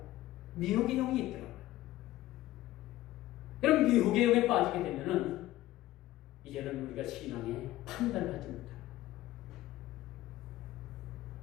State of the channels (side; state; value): right; quieter; 15.8 dB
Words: 미혹의 영이 있더라고요. 그럼 미혹의 영에 빠지게 되면은 이제는 우리가 신앙에 판단을 하지 못합니다.